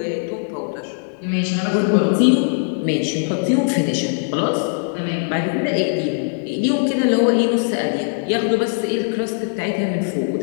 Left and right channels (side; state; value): right; silent; digital silence